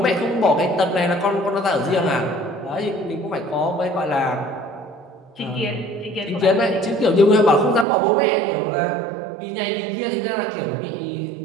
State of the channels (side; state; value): left; drops out; at 7.9 s